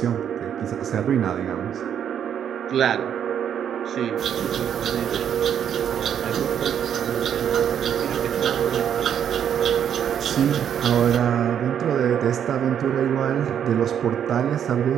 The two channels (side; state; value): left; quieter; 9.0 dB